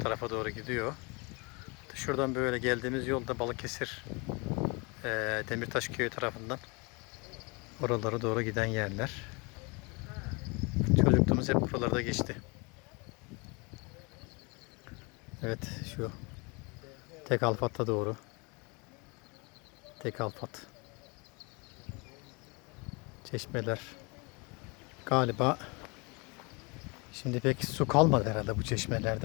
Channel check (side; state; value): right; quieter; 29.4 dB